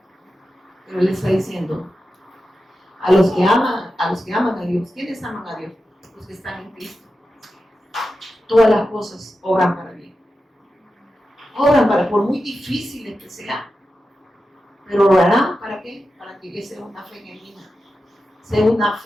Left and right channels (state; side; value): normal; both; correlation 0.91